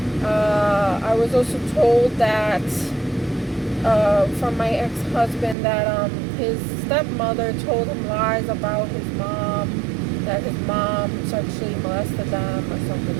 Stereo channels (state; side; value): drops out; left; at 5.6 s